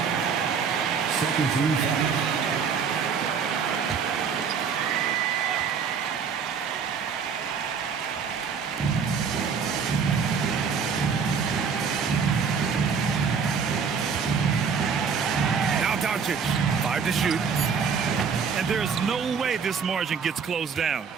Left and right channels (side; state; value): left; quieter; 6.2 dB